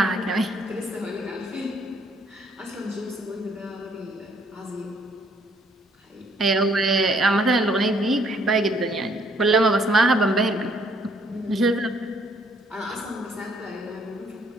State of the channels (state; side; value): normal; both; correlation 0.65